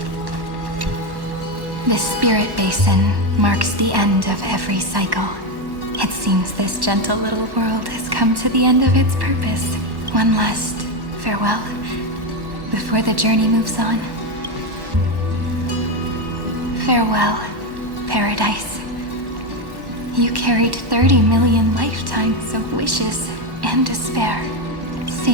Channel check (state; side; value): late; left; 1.1 ms